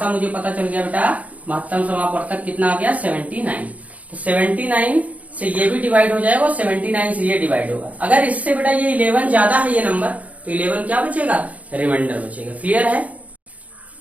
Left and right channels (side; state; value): left; late; 0.070 ms